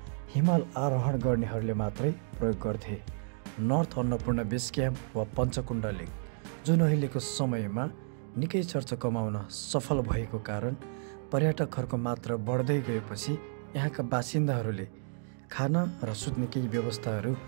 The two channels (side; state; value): left; silent; 57 dB below the other